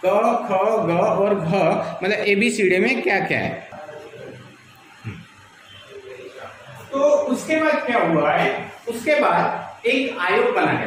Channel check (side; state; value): both; identical; correlation 1.00